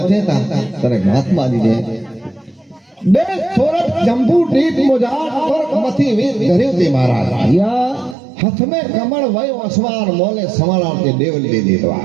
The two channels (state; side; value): drops out; left; at 8.2 s